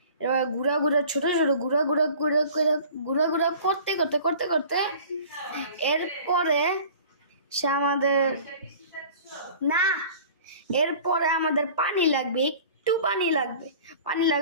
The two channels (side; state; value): both; inverted; correlation -0.45